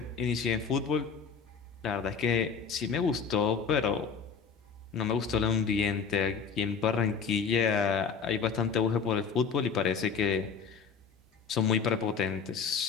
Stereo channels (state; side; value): quieter; right; 5.9 dB